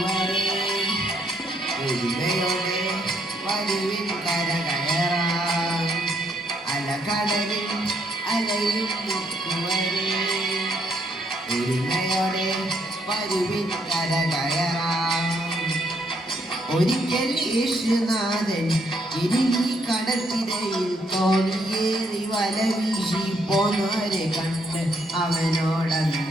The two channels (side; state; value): both; normal; correlation 0.73